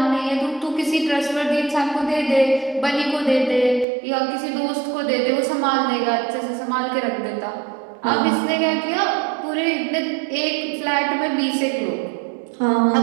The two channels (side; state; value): left; drops out; at 3.9 s